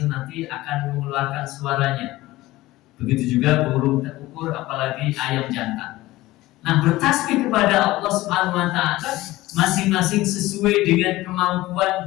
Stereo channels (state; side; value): quieter; right; 17.9 dB